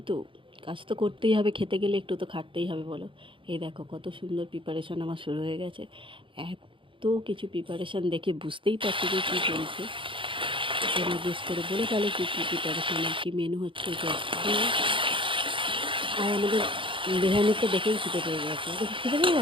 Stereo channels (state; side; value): late; left; 0.25 ms